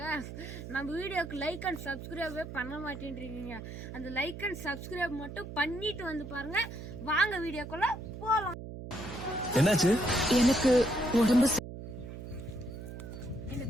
நம்ம வீடியோக்கு லைக் அண்ட் சப்ஸ்கிரைபே பண்ண மாட்டேன்றீங்க. அந்த லைக் அண்ட் சப்ஸ்கிரைப் மட்டும் பண்ணிட்டு வந்து பாருங்க. வாங்க வீடியோக்குள்ள போலாம். என்னாச்சு? எனக்கு உடம்பு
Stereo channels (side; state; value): right; noise; hum, 10 dB below the sound